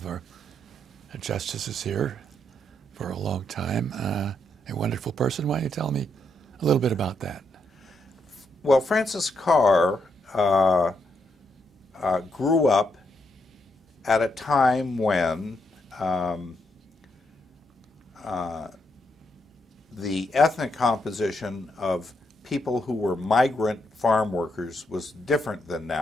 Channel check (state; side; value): normal; both; correlation 0.78